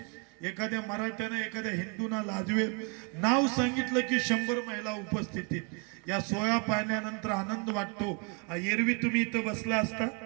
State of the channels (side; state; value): left; quieter; 35.1 dB